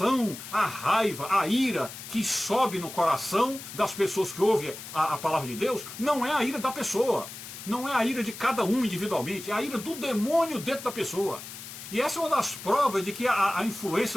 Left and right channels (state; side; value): noise; left; hiss, 12 dB below the sound